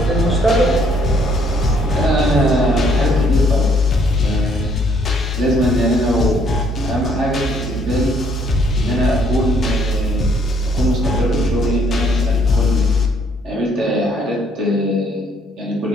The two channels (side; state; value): both; normal; correlation 0.66